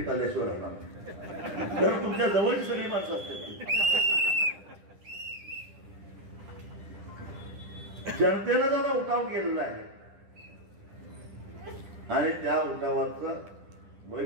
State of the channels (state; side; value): late; left; 10 ms